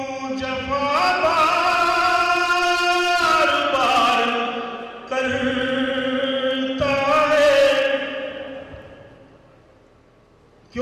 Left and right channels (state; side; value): identical; both; correlation 1.00